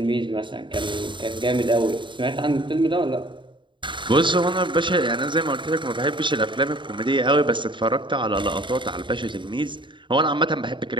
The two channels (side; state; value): left; late; 0.23 ms